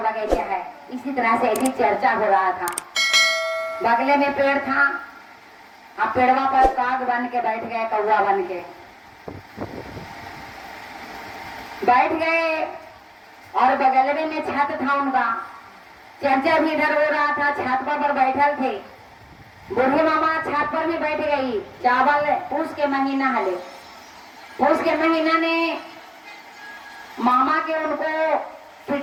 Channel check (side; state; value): both; identical; correlation 1.00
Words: है, इसी तरह से ऐसी चर्चा हो रहा था। बगले में पेड़ था, आप पेड़वा पर काग बन के बैठ गए, कौवा बन के बैठ गए, और बगल में छत था उनका, चर्चा भी इधर हो रहा था, छत पर बैठल थे। बूढ़े मामा छत पर भी बैठ गई। चावल पूस के महीना हले, पूस के महीना ने मामा के उनको